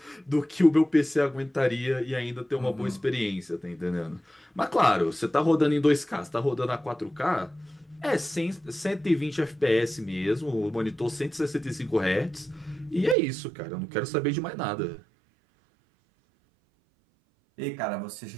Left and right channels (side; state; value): left; drops out; at 13.2 s